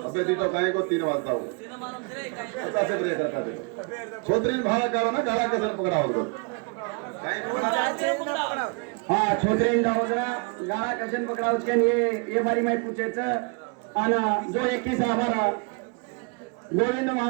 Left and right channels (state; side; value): quieter; left; 33.2 dB